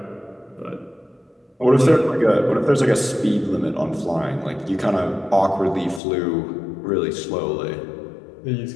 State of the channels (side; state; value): right; drops out; at 6.0 s